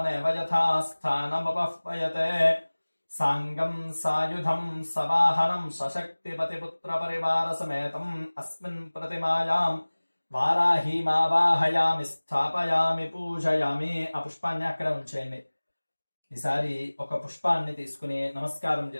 యథా స్థానముపహ్వయతే సాంగం సాయుధం సవాహనం సశక్తిపతిపుత్ర పరివార సమేతం అస్మిన్ ప్రతిమాయాం వారాహీమావాహయామి స్థాపయామి పూజయామి. ఆ పుష్పాన్ని అక్కడ ఉంచేయండి. ఈసారి ఒక పుష్పాన్ని తీసుకుని నమస్కారం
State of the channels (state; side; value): inverted; both; correlation -1.00